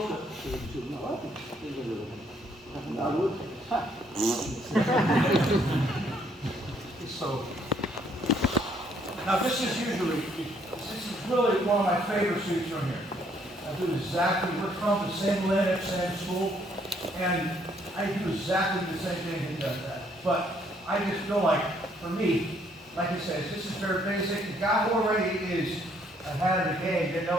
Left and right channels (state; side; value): normal; both; correlation 0.67